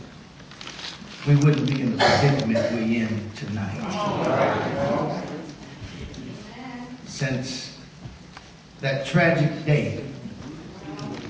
we wouldn't be in the predicament we're in tonight. Since that tragic day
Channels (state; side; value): identical; both; correlation 1.00